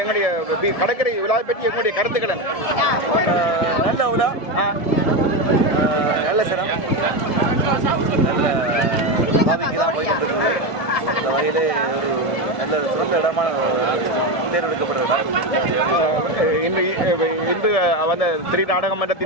எங்களுடைய கடற்கரை விழாவை பற்றி எங்களுடைய கருத்துக்கள் நல்ல விழா நல்ல சிரம் நல்ல பாவிக்கு தான் போய் கொண்டிருக்கிறது இந்த வகையிலே ஒரு நல்ல சிறந்த இடமான தேர்ந்தெடுக்கப்பட்ட இடம் இன்று வந்த திரு நாடக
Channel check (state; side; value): late; right; 1.7 ms